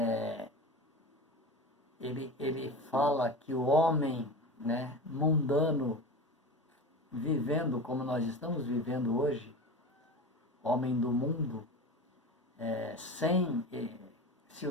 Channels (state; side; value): normal; both; correlation 0.30